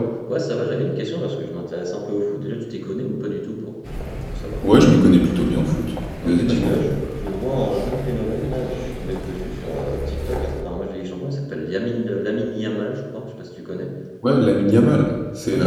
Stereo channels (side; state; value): both; identical; correlation 1.00